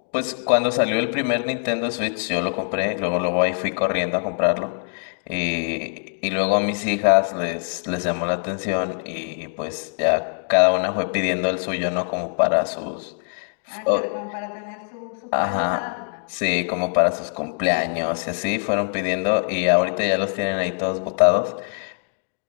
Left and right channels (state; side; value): silent; right; 63 dB below the other